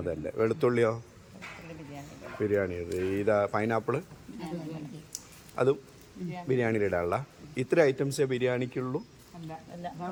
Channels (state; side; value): identical; both; correlation 1.00